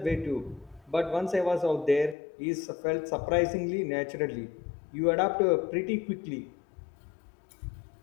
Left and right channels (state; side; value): drops out; right; at 2.1 s